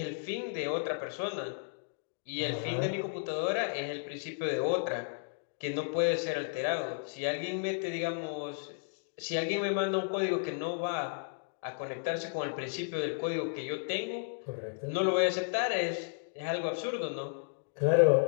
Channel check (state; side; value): silent; right; digital silence